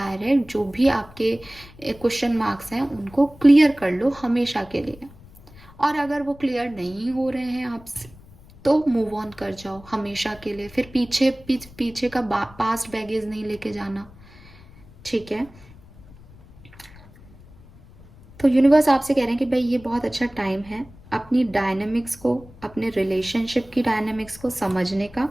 जो भी आपके क्वेश्चन मार्क्स हैं उनको क्लियर कर लो हमेशा के लिए। और अगर वो क्लियर नहीं हो रहे हैं आपसे तो मूव ऑन कर जाओ हमेशा के लिए। फिर पीछे का पास्ट बैगेज नहीं लेके जाना, ठीक है? तो यूनिवर्स आपसे कह रहे हैं कि भाई ये बहुत अच्छा टाइम है अपनी डायनेमिक्स को, अपने रिलेशनशिप की डायनेमिक्स को समझने का,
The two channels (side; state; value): left; noise; rumble, 22 dB below the sound